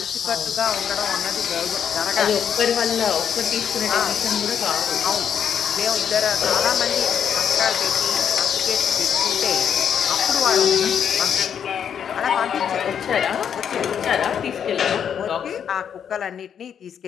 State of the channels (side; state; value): right; quieter; 8.2 dB